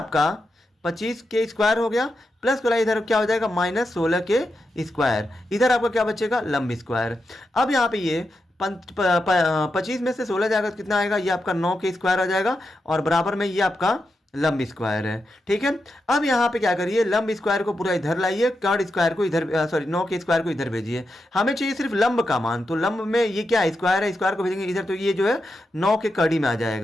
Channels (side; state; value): both; normal; correlation 0.87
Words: 25k स्क्वायर हो गया, प्लस वाला इधर क्या हो जाएगा, -16k स्क्वायर। इधर आपका क्या बचेगा, लंब स्क्वायर। अब यहाँ पे ये 25 में से 16 जाएगा तो कितना आएगा, ये आपका 9k स्क्वायर आ जाएगा, और बराबर में ये आपका लंब स्क्वायर है। ठीक है, अब यहाँ पे क्या करिए, लंब स्क्वायर को पूरा इधर लाइए, कर्ण स्क्वायर को इधर, सॉरी 9 के स्क्वायर को इधर भेजिए। हमें चाहिए सिर्फ लंब का मान, तो लंब में ये क्या स्क्वायर है, स्क्वायर को भेजेंगे इधर, तो ये जो है 9 के कड़ी में आ